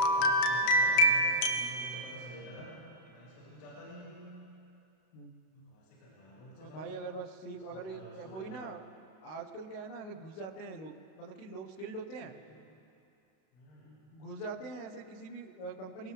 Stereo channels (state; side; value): late; right; 32 ms